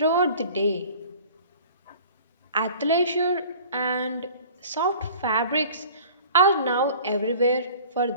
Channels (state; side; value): inverted; both; correlation -0.46